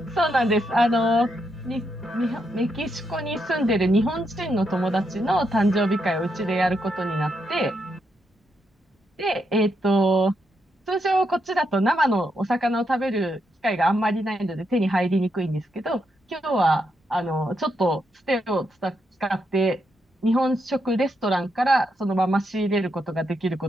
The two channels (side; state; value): both; normal; correlation 0.81